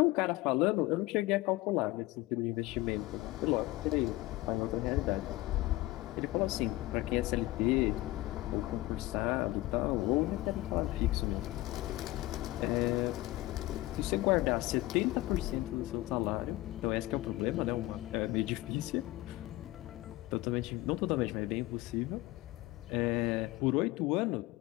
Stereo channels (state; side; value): quieter; right; 18.6 dB